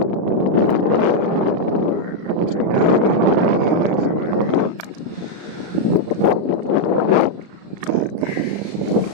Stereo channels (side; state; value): left; late; 35 ms